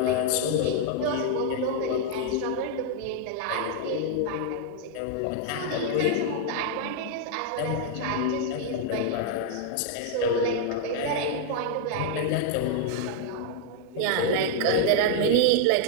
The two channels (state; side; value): different; both; correlation 0.00